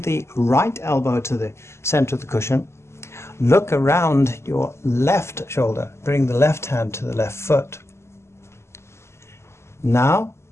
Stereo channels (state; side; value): late; right; 0.13 ms